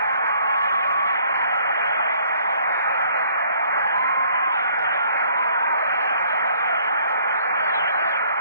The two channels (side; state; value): both; inverted; correlation -0.60